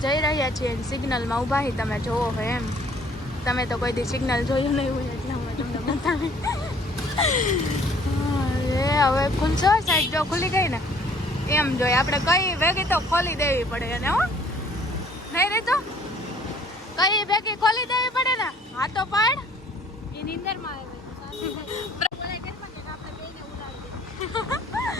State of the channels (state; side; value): normal; both; correlation 0.57